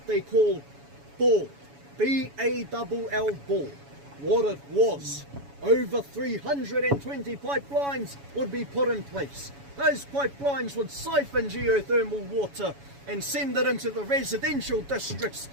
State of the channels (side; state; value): left; late; 7.1 ms